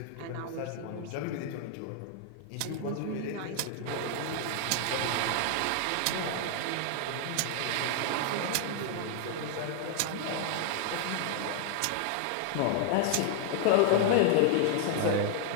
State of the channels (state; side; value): different; both; correlation 0.00